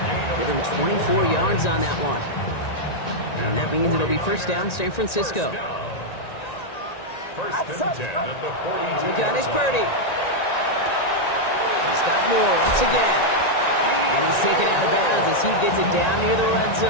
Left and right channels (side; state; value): right; late; 1.9 ms